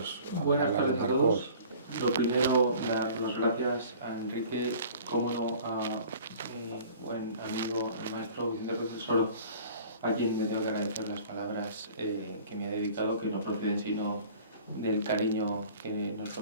Buenas hablar de tardes a Marcos. todos. Lo primero, dar las gracias a Enrique, como no a mi buen amigo, el maestro Vicente Ruiz del Soro, a quien me tengo que agradecer las palabras que me ha dedicado, que no proceden sino del cariño que nos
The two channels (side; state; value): both; inverted; correlation -0.48